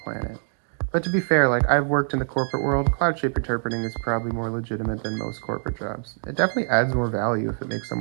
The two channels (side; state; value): left; silent; digital silence